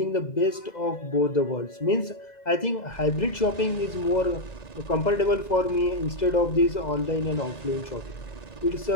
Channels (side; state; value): right; late; 2.0 ms